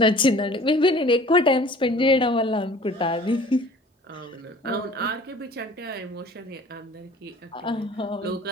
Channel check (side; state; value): both; normal; correlation 0.48